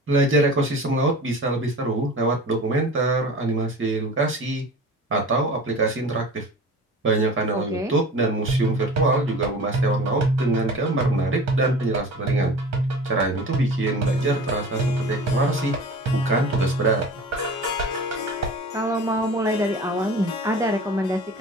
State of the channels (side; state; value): both; normal; correlation 0.39